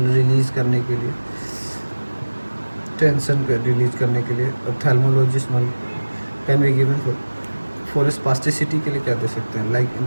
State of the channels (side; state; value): both; inverted; correlation -1.00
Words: रिलीज़ करने के लिए, टेंशन को रिलीज करने के लिए, ophthalmologist can be given for spasticity के लिए क्या दे सकते हैं, like